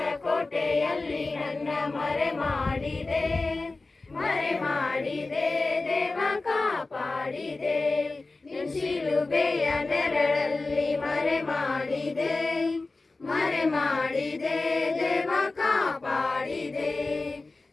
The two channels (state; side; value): quieter; right; 3.4 dB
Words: ಕೋಟೆಯಲ್ಲಿ ನನ್ನ ಮರೆ ಮಾಡಿದೆ, ಮರೆ ಮಾಡಿದೆ ದೇವ ಕಾಪಾಡಿದೆ, ನಿನ್ನ ಶಿಲುಬೆಯ ನೆರಳಲ್ಲಿ ಮರೆ ಮಾಡಿದೆ, ಮರೆ ಮಾಡಿದೆ ದೇವ ಕಾಪಾಡಿದೆ.